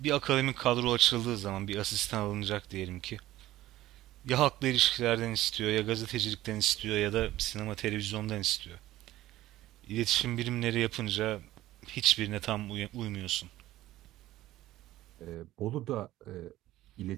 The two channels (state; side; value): quieter; left; 15.3 dB